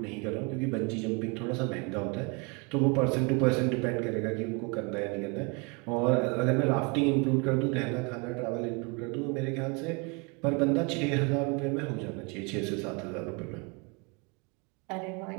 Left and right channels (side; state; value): left; quieter; 31.0 dB